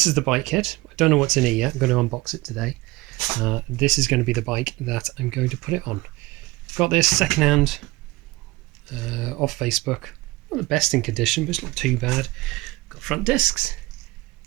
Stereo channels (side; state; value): left; quieter; 20.8 dB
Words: is the bike kit. I don't know what's in it yet. I'm going to unbox it today. This is going to be the bike that I'm going to put it on. Got this secondhand off Facebook. Not the best in condition, but it's not too bad. Got front discs,